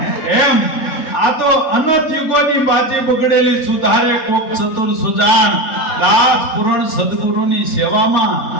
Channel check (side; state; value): right; late; 4.4 ms